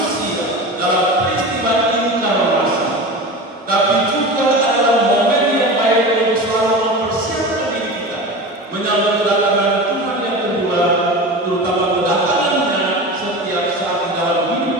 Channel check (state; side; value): normal; both; correlation 0.30